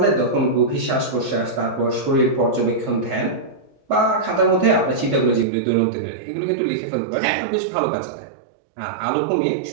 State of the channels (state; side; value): drops out; left; at 5.5 s